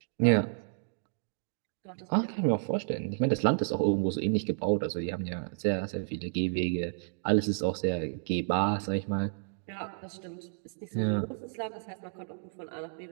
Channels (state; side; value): silent; left; digital silence